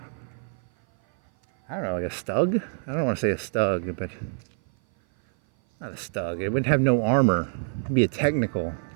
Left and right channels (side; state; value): left; silent; 57 dB below the other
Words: don't know, like a Stug? I don't want to say a Stug, but not a Stug. It would have no armor. It'd be a technical.